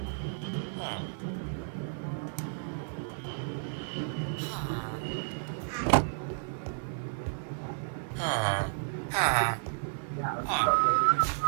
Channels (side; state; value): left; silent; 56 dB below the other